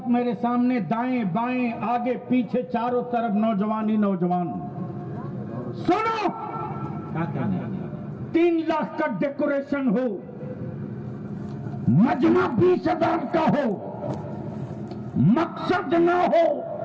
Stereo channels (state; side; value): identical; both; correlation 1.00